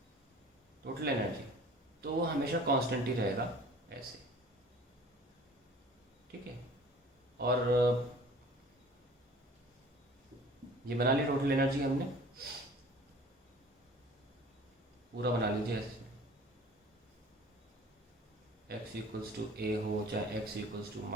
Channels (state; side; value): normal; both; correlation 0.46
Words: टोटल एनर्जी, तो वो हमेशा कांस्टेंट ही रहेगा ऐसे, ठीक है। और ये बना लिया टोटल एनर्जी हमने, पूरा बना लीजिए ऐसे, x इक्वल्स टू a हो चाहे x इक्वल्स टू -a